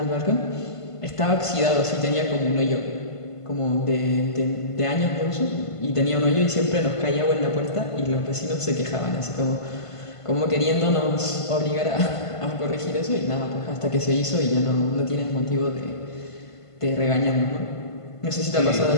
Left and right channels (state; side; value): late; right; 1.5 ms